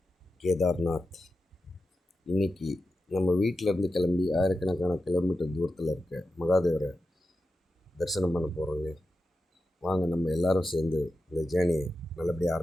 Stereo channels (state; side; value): normal; both; correlation 0.90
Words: கேதார்நாத். இன்றைக்கி நம்ம வீட்டிலேருந்து கிளம்பி ஆயிரக்கணக்கான கிலோமீட்டர் தூரத்தில் இருக்க மகாதேவரை தரிசனம் பண்ண போகிறோங்க. வாங்க நம்ம எல்லோரும் சேர்ந்து இந்த ஜேர்னியை நல்லபடியாக